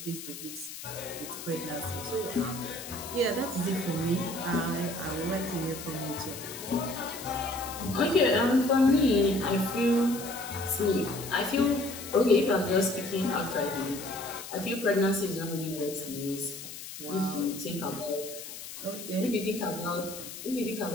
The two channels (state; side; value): noise; left; hiss, 11 dB below the sound